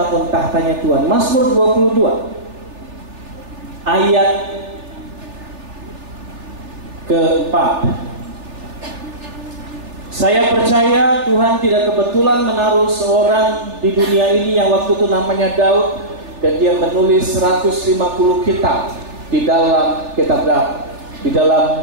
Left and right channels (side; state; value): left; late; 3.4 ms